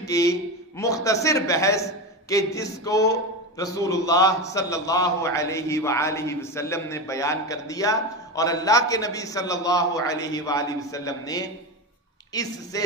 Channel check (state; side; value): normal; both; correlation 0.20